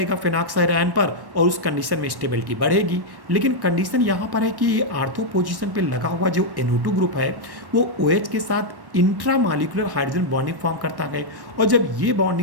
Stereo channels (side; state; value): left; late; 1.1 ms